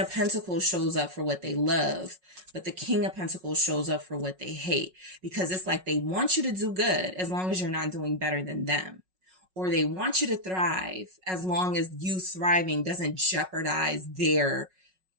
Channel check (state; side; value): late; left; 5.4 ms